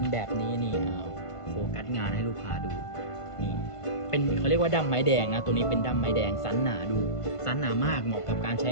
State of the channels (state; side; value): late; right; 1.5 ms